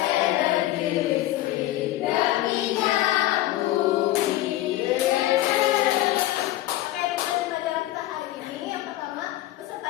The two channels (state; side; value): quieter; right; 15.5 dB